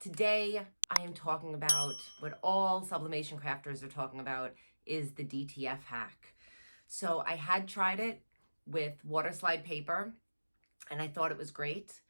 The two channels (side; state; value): both; inverted; correlation -1.00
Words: I am talking about what all sublimation crafters are talking about is the DTF hack. So I had tried it with water slide paper and I thought it was great.